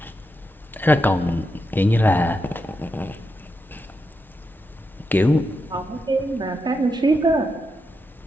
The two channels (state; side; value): normal; both; correlation 0.85